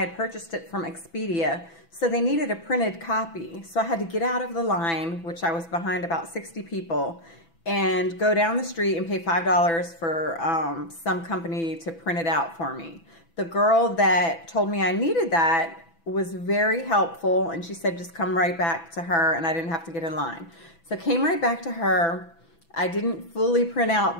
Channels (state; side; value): late; right; 6.0 ms